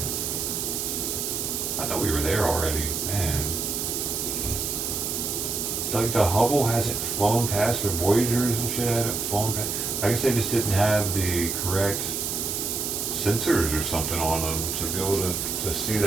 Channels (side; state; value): right; noise; hiss, 2 dB below the sound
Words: I thought we were there already, man. Like the Hubble hasn't flown past, or Voyagers and shit haven't flown past. I guess they just didn't have the correct sensors or something on them to be able to see